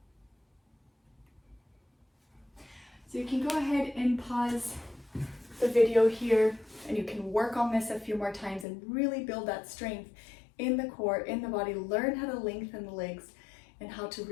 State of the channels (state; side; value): drops out; right; at 8.7 s